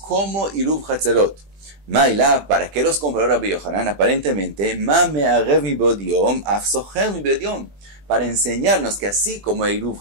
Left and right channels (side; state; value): left; late; 20 ms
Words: Iruv Hatzerot. Maila, ¿para qué los compró Rabbi Yohanan? Aparentemente, ma me arev mi bodiom, af socher mi bodiom. Para enseñarnos que así como Iruv